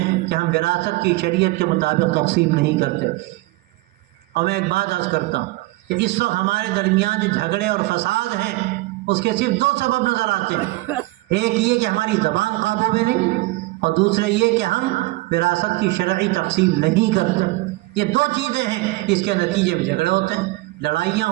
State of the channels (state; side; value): quieter; left; 20.6 dB